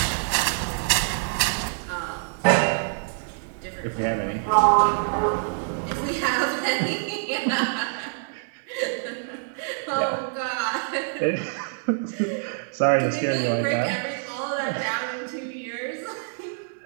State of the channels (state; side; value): silent; left; digital silence